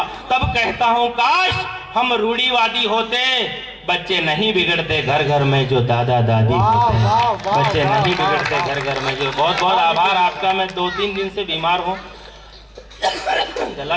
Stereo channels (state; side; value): identical; both; correlation 1.00